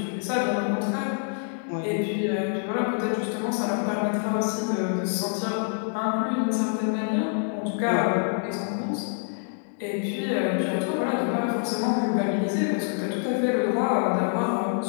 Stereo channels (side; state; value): right; silent; 59 dB below the other